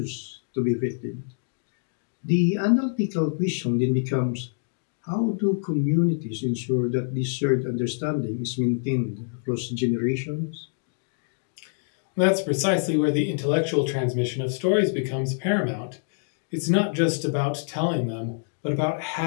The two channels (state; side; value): silent; right; digital silence